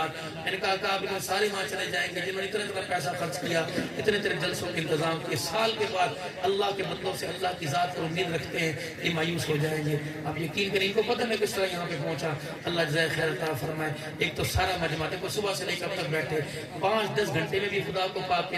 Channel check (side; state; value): both; identical; correlation 1.00